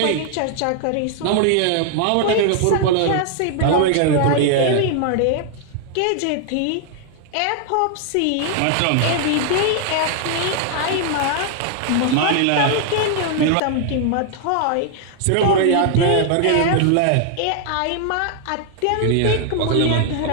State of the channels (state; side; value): different; both; correlation 0.00